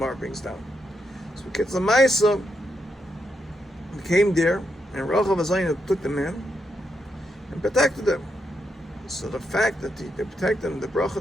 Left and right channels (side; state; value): both; normal; correlation 0.82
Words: brings down. So Kitzur Maisa came there, and Rachav Azayna took them in and protected them. So the fact that they protected them, the bracha